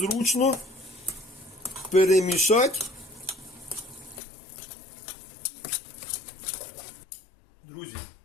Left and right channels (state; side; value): drops out; right; at 4.2 s